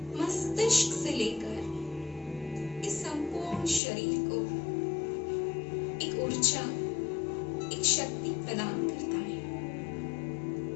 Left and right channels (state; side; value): drops out; right; at 3.8 s